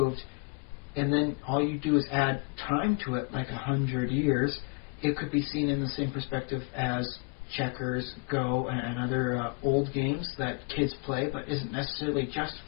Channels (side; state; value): right; quieter; 33.7 dB